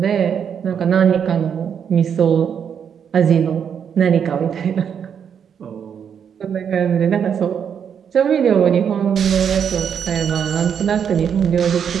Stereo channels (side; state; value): left; quieter; 7.8 dB